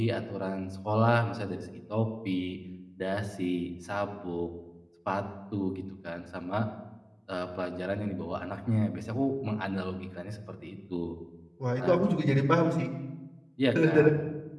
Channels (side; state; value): both; identical; correlation 1.00